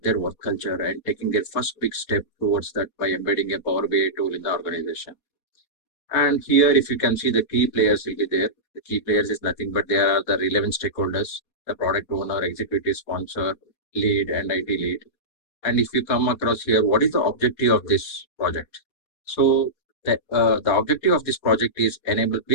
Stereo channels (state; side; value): late; right; 4.2 ms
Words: their work culture and taking their first big step towards that by embedding a Power BI tool in the organization. And here, if you can see, the key players will be there. The key players is nothing but they are the relevant stakeholders, the product owner, executive sponsor, lead, and IT lead. And if you come across here, what is the objective of this project? So the objective of this project is enable